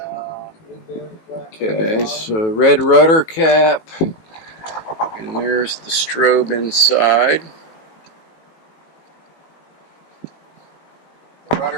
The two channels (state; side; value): late; right; 18 ms